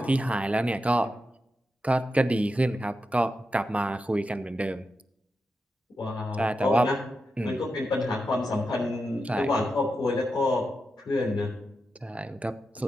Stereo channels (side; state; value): both; normal; correlation 0.88